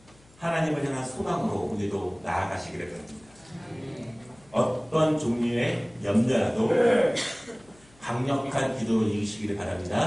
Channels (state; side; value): noise; left; hum, 28 dB below the sound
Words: 하나님을 향한 소망으로 우리도 나아가시기를 바랍니다. 어떤 종류의 염려라도 강력한 기도로 이기시기를